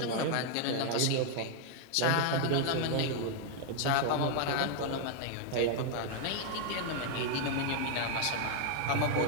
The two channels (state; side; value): different; both; correlation 0.00